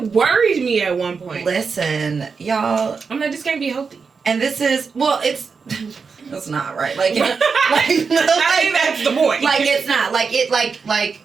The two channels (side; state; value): left; quieter; 5.3 dB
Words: worried me at one point. Listen, y'all. I'm like, this can't be healthy. And this is that's not right. Like, I think that's the point. Like it's not like